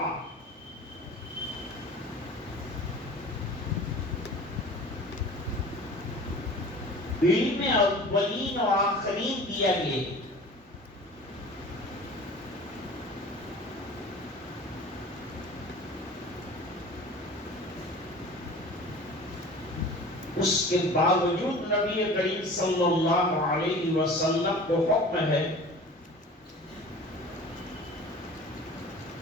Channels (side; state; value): both; normal; correlation 0.41